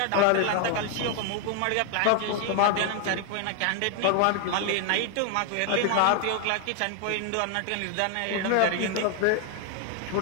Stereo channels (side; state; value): both; different; correlation 0.00